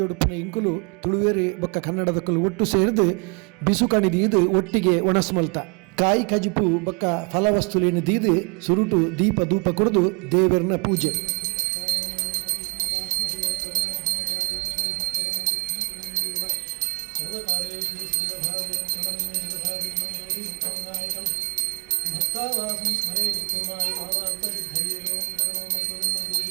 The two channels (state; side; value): quieter; left; 28.7 dB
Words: ಇಂಕುಲು ತುಳುವೇರಿ ಬೊಕ್ಕ ಕನ್ನಡದಕ್ಕಲು ಒಟ್ಟು ಸೇರಿದು ಬಿಸು ಕಣಿದೀದು ಒಟ್ಟಿಗೆ ಒಣಸ್ಮಲ್ತ ಕಾಯಿ ಕಜಿಪು ಬೊಕ್ಕ ಫಲವಸ್ತುಲೇನು ದೀದು ಸುರುಟು ದೀಪ ಧೂಪ ಕುಡಿದು ದೇವರನ ಪೂಜೆ.